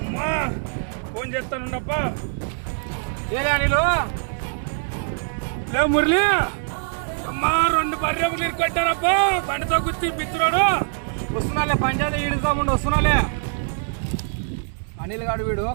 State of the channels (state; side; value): silent; left; digital silence